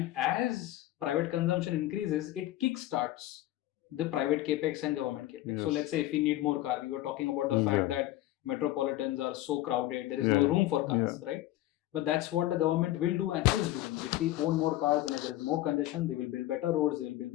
as private consumption increases, it kickstarts the private capex and government capex. So Yes. let's say if we need more car, we were talking about the fact that metropolitans are so crowded, there is no room for cars, right? But that's what the government will do and is doing. If we own more cars and if there is more congestion, they will build better roads, they will build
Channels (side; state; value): right; quieter; 15.4 dB